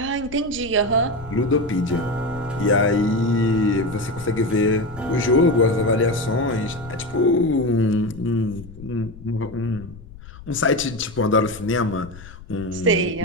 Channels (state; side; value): noise; left; rumble, 17 dB below the sound